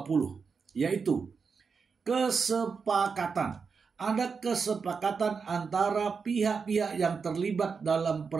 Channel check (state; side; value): quieter; left; 5.4 dB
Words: yaitu kesepakatan. Ada kesepakatan antara pihak-pihak yang terlibat dalam